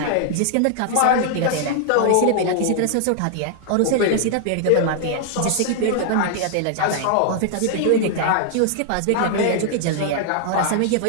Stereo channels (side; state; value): both; different; correlation -0.01